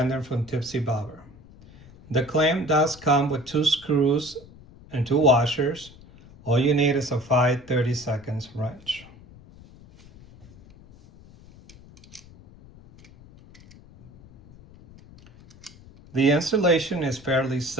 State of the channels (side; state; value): left; noise; rumble, 22 dB below the sound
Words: from Tipsy Bobber. The clamp does come with 2 screws and 2 washers. All you need is a 5/32 wrench. The installation is fairly